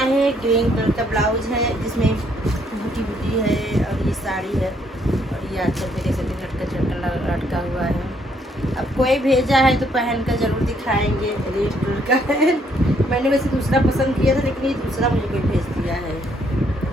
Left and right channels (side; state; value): both; normal; correlation 0.69